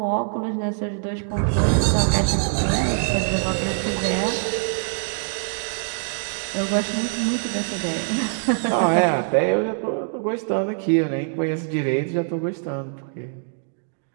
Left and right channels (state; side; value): silent; left; digital silence